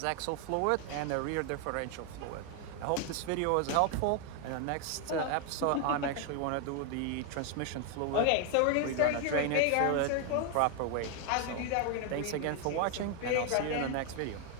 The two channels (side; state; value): both; different; correlation 0.01